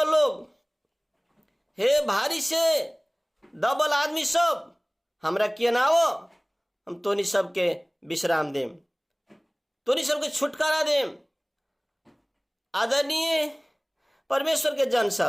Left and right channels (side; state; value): both; identical; correlation 1.00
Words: लोग, हे भारी से दबल आदमी सब, हमरा किए ना हो, हम तोनी सबके विश्राम देम, तोनी सबके छुटकारा देम। आदरणीय परमेश्वर के जन